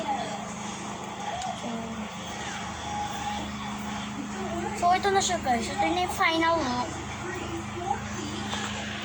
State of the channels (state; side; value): identical; both; correlation 1.00